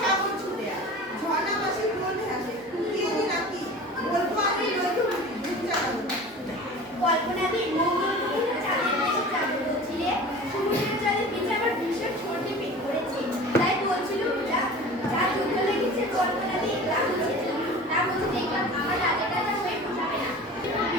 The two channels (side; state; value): both; normal; correlation 0.38